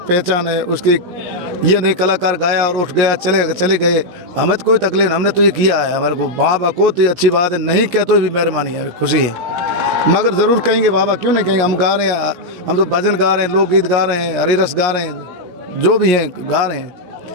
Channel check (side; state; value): left; late; 17 ms